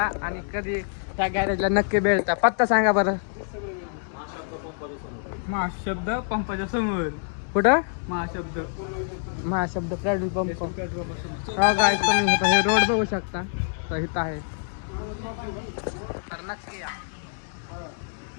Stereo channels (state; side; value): silent; right; digital silence